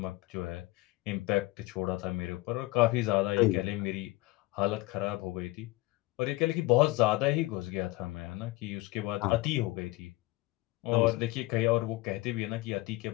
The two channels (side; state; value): right; quieter; 20.5 dB